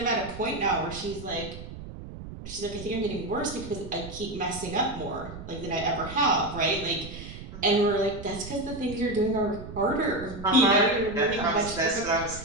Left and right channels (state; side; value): noise; right; rumble, 12 dB below the sound